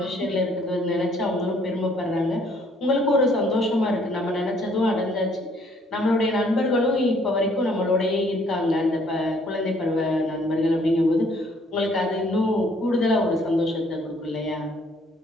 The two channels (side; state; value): both; normal; correlation 0.63